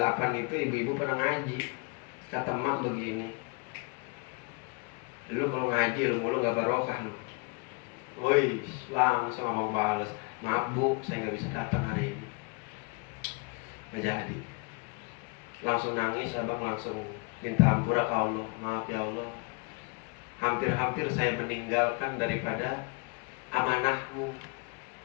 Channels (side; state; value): right; quieter; 31.3 dB